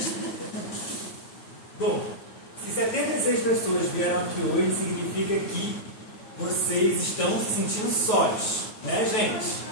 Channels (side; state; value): right; late; 9.2 ms